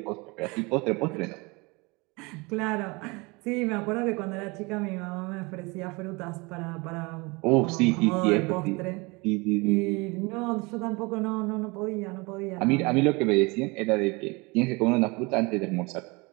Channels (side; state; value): left; quieter; 26.4 dB